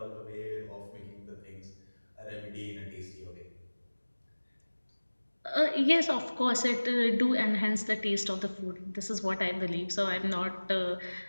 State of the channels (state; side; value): inverted; both; correlation -1.00